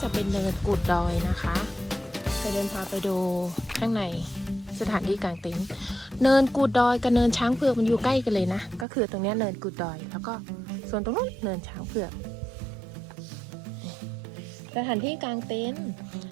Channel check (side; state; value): left; drops out; at 8.8 s